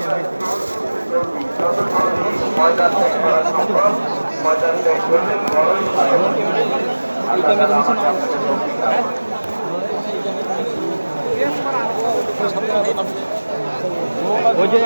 ময়দান ত্যাগ করা সম্ভব ময়দান ত্যাগ করলে বড়ই ভালো ওই যে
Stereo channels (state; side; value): inverted; both; correlation -1.00